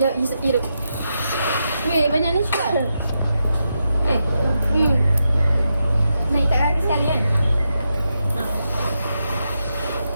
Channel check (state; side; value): inverted; both; correlation -0.85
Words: Jom hidup. Weh, banyak ni juga. Naik tak kaki sekali kan?